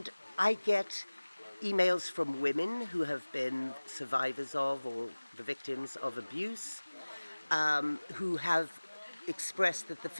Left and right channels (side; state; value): both; inverted; correlation -1.00